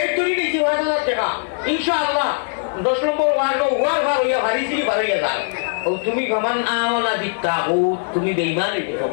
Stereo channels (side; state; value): right; silent; 66 dB below the other